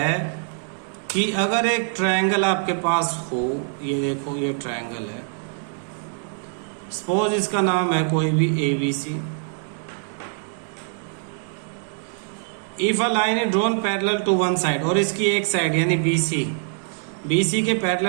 कि अगर एक triangle आपके पास हो, ये देखो ये ट्रायंगल है, सपोज इसका नाम है कोई भी ABC। If a line is drawn parallel to one side, और इसकी एक साइड यानी BC के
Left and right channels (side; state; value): left; silent; 60 dB below the other